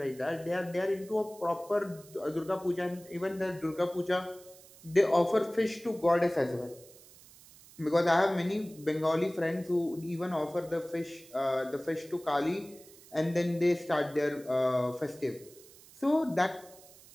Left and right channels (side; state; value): right; noise; hiss, 22 dB below the sound